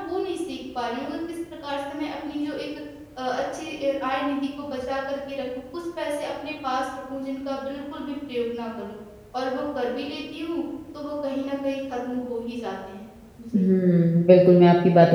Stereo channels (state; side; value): identical; both; correlation 1.00